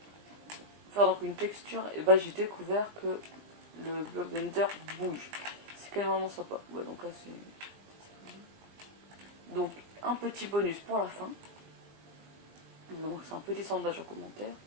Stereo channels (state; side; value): late; left; 20 ms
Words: Faire donc une texture, et bah j'ai découvert que le bloc de Nether bouge. C'est quand même vraiment sympa. Ouais, donc là c'est... Donc un petit bonus pour la fin. Donc c'est un petit sondage en commentaire.